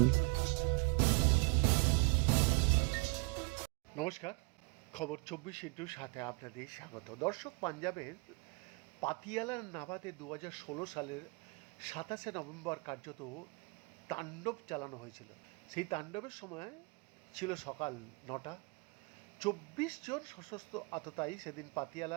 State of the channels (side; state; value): left; quieter; 30.8 dB